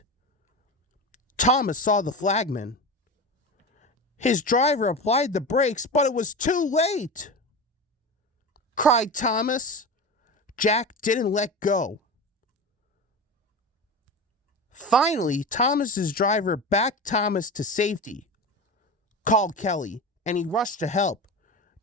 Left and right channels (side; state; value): both; normal; correlation 0.26